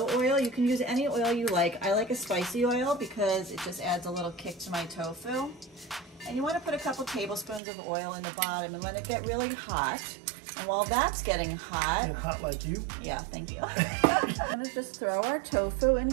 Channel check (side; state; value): left; drops out; at 7.6 s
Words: oil. You can use any oil you like. I like a spicy oil because it just adds a little kick to my tofu. And you want to put a couple tablespoons of oil in the bottom and let it get really hot. And while that's getting hot... Get hot like you? Yeah, thank you. I'm going to just throw our tofu in